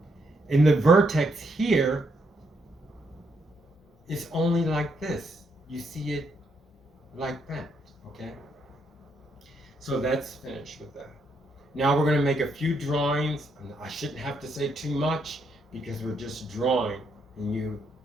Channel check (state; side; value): normal; both; correlation 0.76